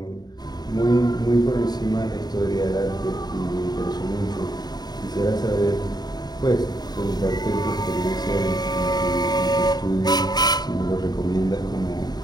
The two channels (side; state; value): right; late; 0.20 ms